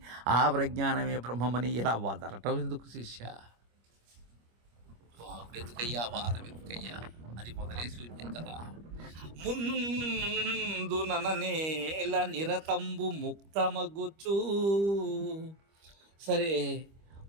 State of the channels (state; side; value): late; left; 25 ms